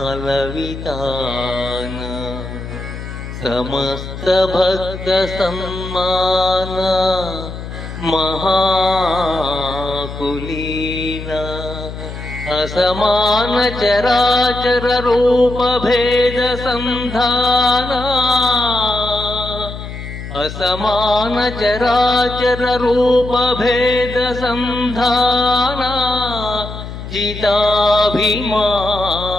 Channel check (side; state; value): left; noise; hum, 9 dB below the sound